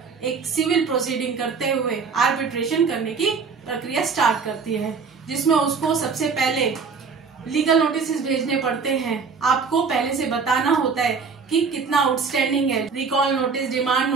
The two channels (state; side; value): quieter; left; 5.3 dB